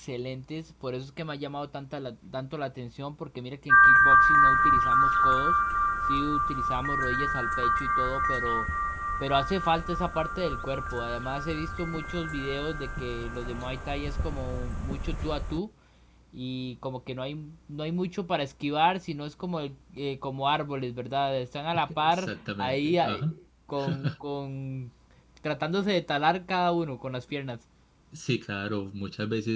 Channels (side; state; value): both; identical; correlation 1.00